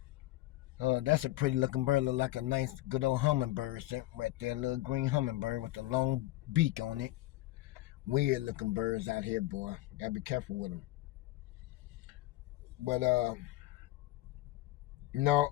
That's a pretty looking bird. Look like a nice, good old hummingbird right there. A little green hummingbird with a long beak on it. Weird looking birds out here, boy. Gotta be careful with them. But,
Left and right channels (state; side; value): quieter; right; 17.3 dB